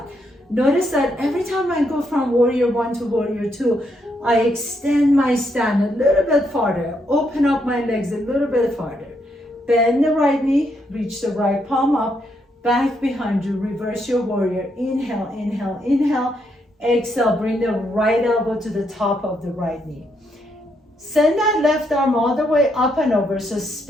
Notice that every time I go from warrior one to warrior two, I extend my stand a little bit farther, open up my legs a little bit farther. Bend the right knee, reach the right palm up, back behind you, reverse your warrior. Inhale, inhale, inhale. Exhale, bring the right elbow to the top of the right knee. Send that left arm all the way up and over, so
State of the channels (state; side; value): normal; both; correlation 0.77